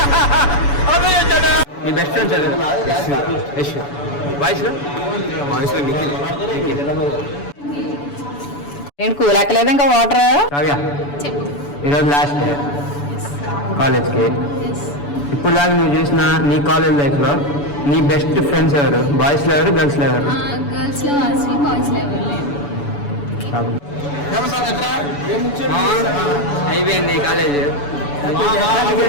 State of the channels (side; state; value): right; late; 7.0 ms